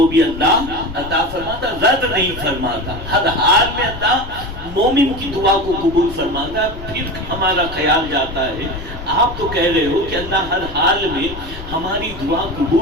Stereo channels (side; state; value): left; noise; rumble, 12 dB below the sound